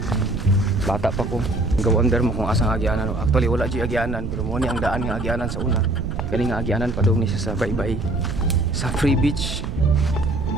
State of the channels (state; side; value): noise; right; rumble, 5 dB below the sound